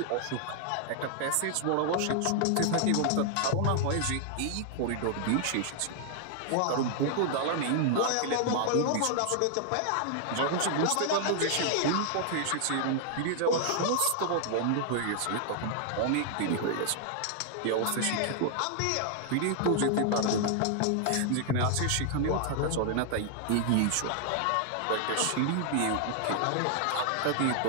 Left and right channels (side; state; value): both; different; correlation 0.00